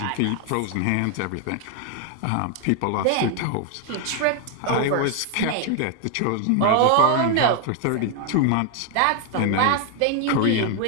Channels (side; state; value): both; different; correlation 0.00